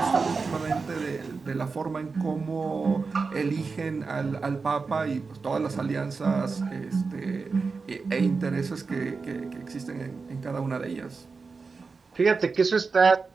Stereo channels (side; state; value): left; quieter; 4.6 dB